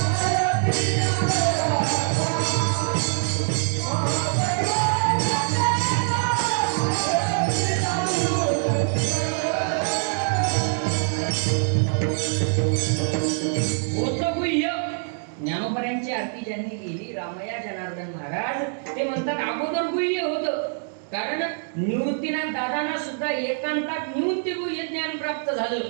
ज्ञानोबरायांची आरती ज्यांनी केली रामया जनार्दन महाराज, ते म्हणतात अगोदर गुह्य होतं. कारण निवृत्तीनाथ दादांना सुद्धा एकांतात निवृत्ती गुह्य ज्ञान प्राप्त झालं.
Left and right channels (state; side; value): silent; left; digital silence